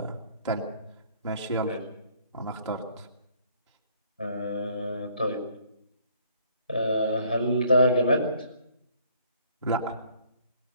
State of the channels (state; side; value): inverted; both; correlation -0.62